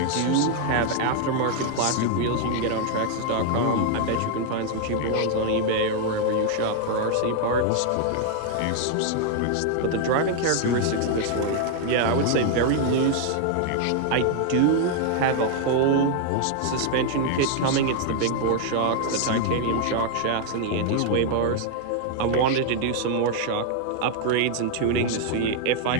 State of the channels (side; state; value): both; different; correlation 0.00